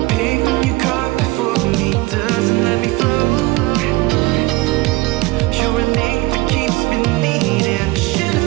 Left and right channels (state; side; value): quieter; left; 21.4 dB